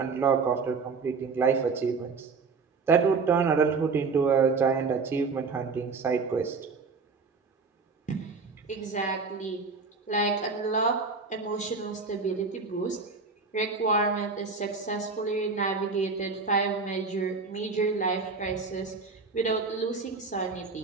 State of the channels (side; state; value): left; quieter; 4.6 dB